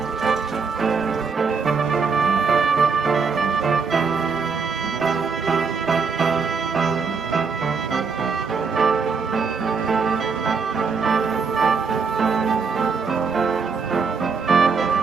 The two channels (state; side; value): quieter; left; 5.2 dB